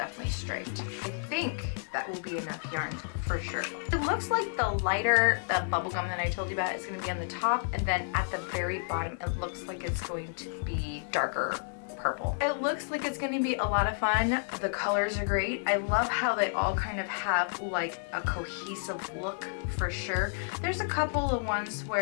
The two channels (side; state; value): right; silent; digital silence